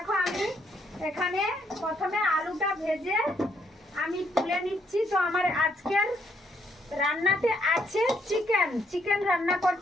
আমি এখানে প্রথমে আলুটা ভেজে আমি তুলে নিচ্ছি। তো আমার আজকের রান্নাতে আছে চিকেন রান্না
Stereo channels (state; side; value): normal; both; correlation 0.72